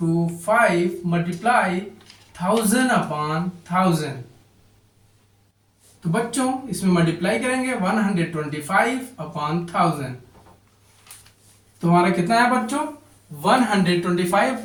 मल्टीप्लाई 1000/1000। तो बच्चों इसमें मल्टीप्लाई करेंगे 125/1000। तो हमारा कितना है बच्चों?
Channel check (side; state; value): both; identical; correlation 1.00